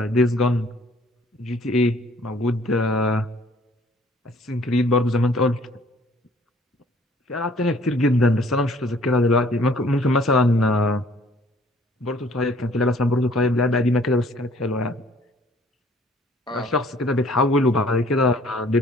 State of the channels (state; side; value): normal; both; correlation 0.58